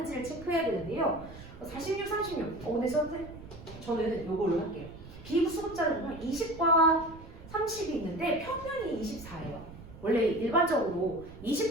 체크해야 되는데요. 46, 36. 근데 저는 이걸로 할게요. 비부수급자를 보면 20과 30이 있는데 평균이 24예요. 원래 일반적으로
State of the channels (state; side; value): noise; right; rumble, 16 dB below the sound